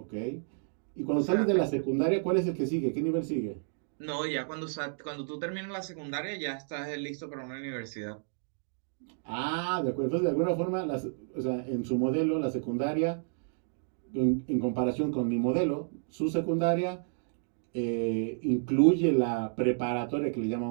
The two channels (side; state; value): left; silent; digital silence